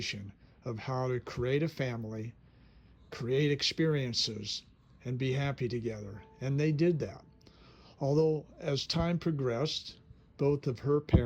of how to create a family, create experiences, and be happy together. And they did that. Although as time progressed, both of her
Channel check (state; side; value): identical; both; correlation 1.00